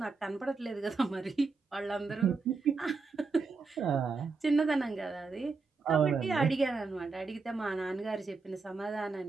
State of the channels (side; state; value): left; quieter; 4.4 dB